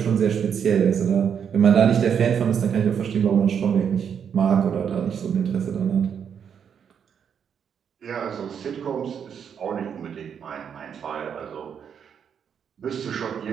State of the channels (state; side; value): quieter; left; 7.7 dB